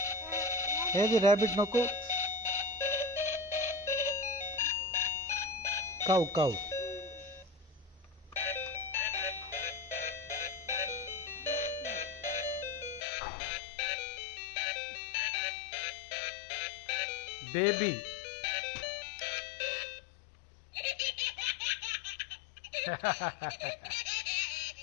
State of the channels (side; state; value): right; drops out; at 13.0 s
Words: ఏది rabbit నొక్కు కౌ కౌ బేబీ